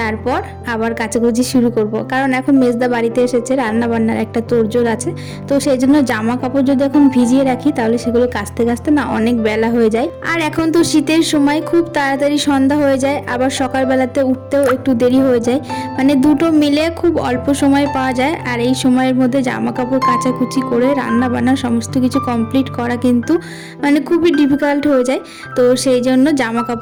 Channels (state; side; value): identical; both; correlation 1.00